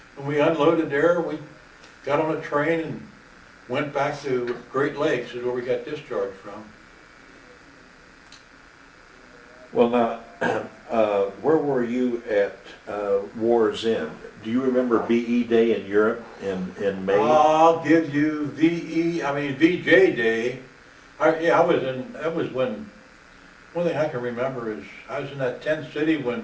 When we unloaded there, we got on a train and went back to Great Lakes, is where we got discharged from. Well, now, where were you at War's End? Do you remember BE Day in Europe in May? I'll give you VJ Day. That was when, one thing I can remember is, I was in that tent city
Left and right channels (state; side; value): identical; both; correlation 1.00